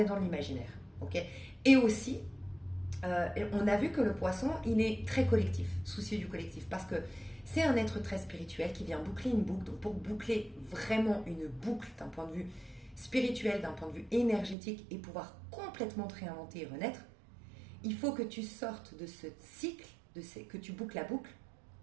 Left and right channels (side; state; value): left; drops out; at 14.6 s